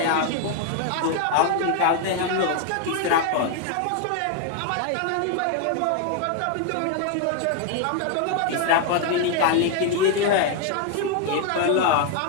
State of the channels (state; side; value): different; both; correlation 0.00